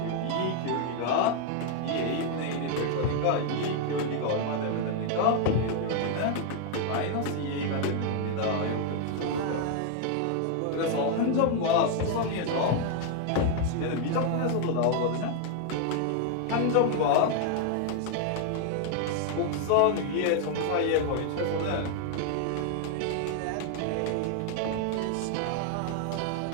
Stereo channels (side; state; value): both; different; correlation 0.00